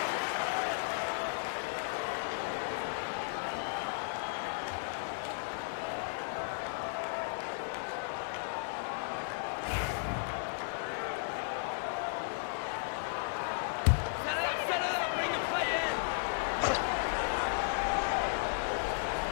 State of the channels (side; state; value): right; silent; digital silence